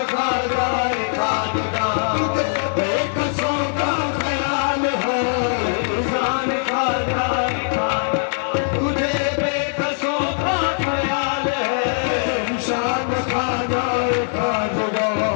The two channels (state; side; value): silent; right; digital silence